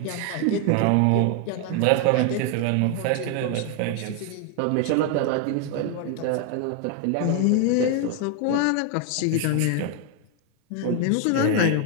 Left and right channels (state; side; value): different; both; correlation 0.01